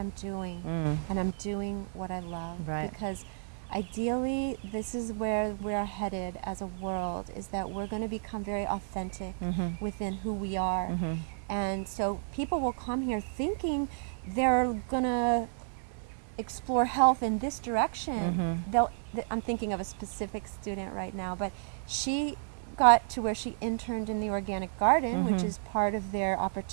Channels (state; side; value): silent; left; digital silence